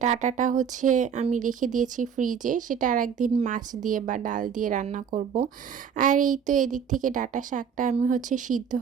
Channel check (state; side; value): quieter; left; 7.4 dB